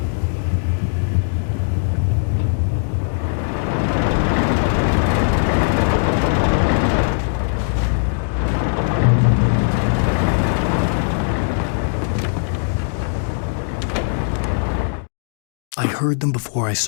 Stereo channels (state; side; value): silent; right; digital silence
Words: I heard them before I